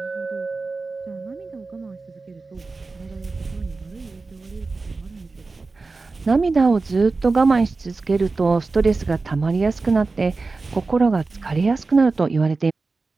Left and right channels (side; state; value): left; quieter; 3.8 dB